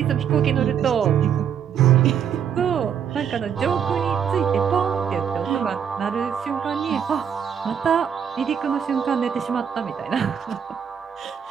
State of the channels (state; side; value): quieter; left; 8.0 dB